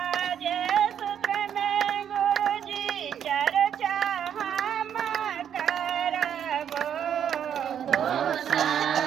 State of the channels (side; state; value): left; quieter; 9.0 dB